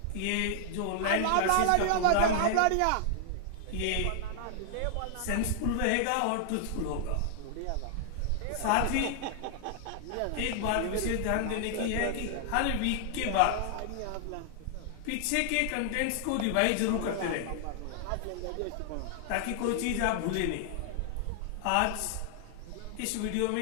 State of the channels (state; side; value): different; both; correlation 0.00